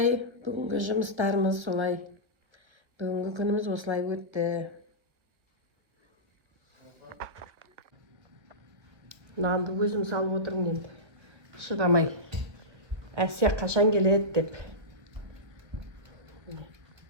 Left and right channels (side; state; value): left; late; 1.2 ms